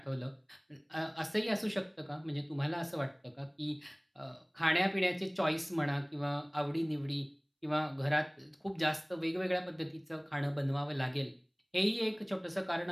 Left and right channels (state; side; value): identical; both; correlation 1.00